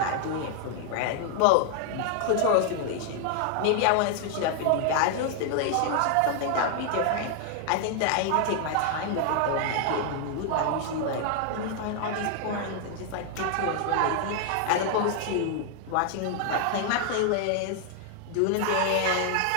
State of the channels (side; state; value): both; different; correlation 0.00